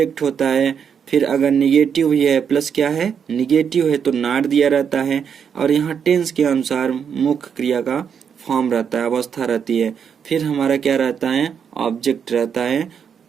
होता है, फिर अगर निगेटिव ही है प्लस क्या है निगेटिव है तो नॉट दिया रहता है, और यहाँ टेंस के अनुसार मुख्य क्रिया का फॉर्म रहता है, अवस्था रहती है। फिर हमारा क्या रहता है? ऑब्जेक्ट रहता है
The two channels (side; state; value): left; quieter; 7.3 dB